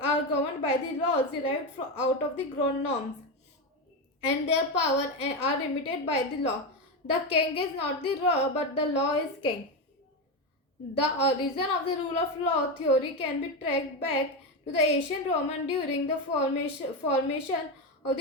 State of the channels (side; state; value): both; normal; correlation 0.13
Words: are governed by the laws derived out of the ground norms, and their power are limited by the law. The king is not the law, but the law is king. The origin of the rule of law theory can be tracked back to the ancient Roman during the formation of